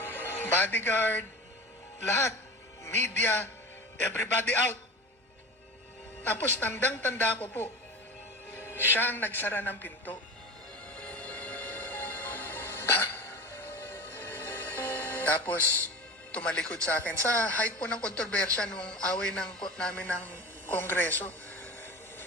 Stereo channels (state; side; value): normal; both; correlation 0.31